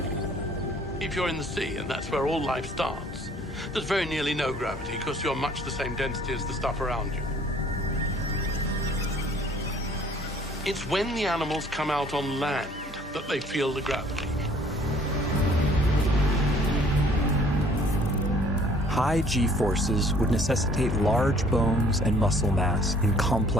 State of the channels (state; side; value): normal; both; correlation 0.57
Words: If you're in the sea, and that's where all life starts, there's very nearly no gravity because you're much the same density as the stuff around you. It's when the animals come out on land that they feel the gravity. High G-forces would necessitate large bones and muscle mass in